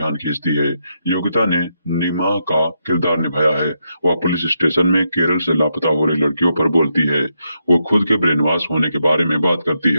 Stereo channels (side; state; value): both; inverted; correlation -0.81